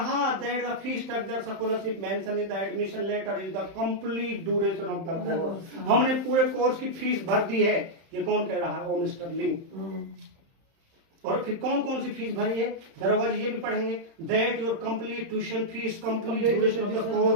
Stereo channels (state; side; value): late; left; 31 ms